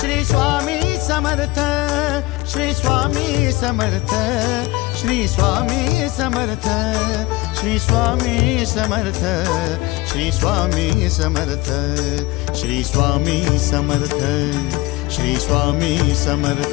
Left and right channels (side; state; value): right; quieter; 20.9 dB